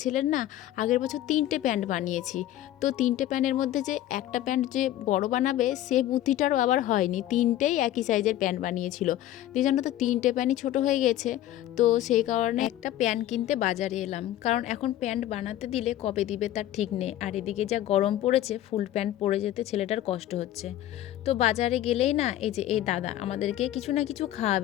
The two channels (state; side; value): quieter; right; 13.3 dB